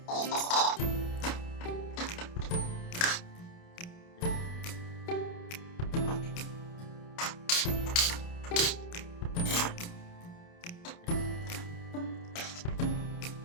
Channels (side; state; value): right; late; 29 ms